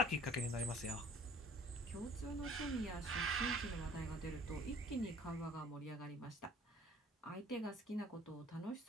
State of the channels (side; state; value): both; normal; correlation 0.53